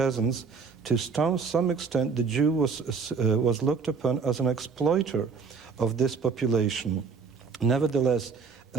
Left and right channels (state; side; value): quieter; left; 5.4 dB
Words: to some extent, the Jew was looked upon as an exploiter of this population. Nevertheless,